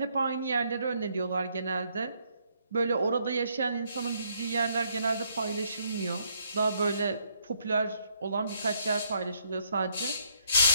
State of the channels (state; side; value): inverted; both; correlation -0.71